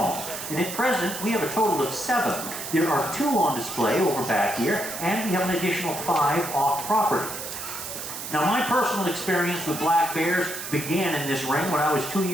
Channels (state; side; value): noise; right; hiss, 8 dB below the sound